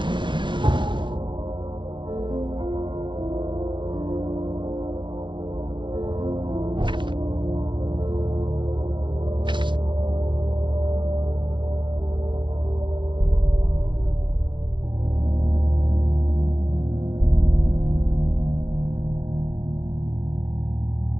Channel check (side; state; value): left; late; 0.24 ms